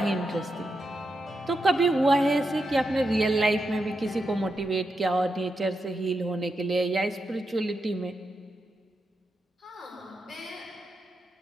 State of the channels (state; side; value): normal; both; correlation 0.86